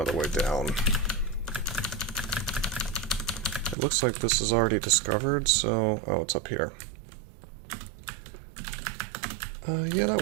way down. It looks like this is already discovered, so... oh, it's up here. Yeah,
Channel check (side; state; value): left; drops out; at 3.8 s